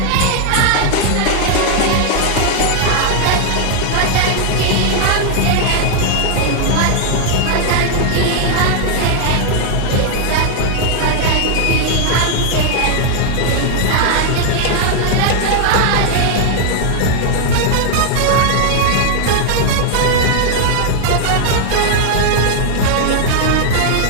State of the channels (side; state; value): both; different; correlation 0.00